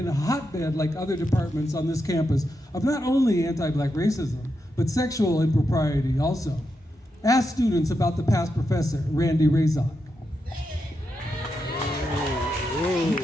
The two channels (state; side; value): normal; both; correlation 0.85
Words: a hotbed, like other departments on this campus, of not only anti-Black racism, but sexual impropriety also. Ask students about the past professor, Randy Razak.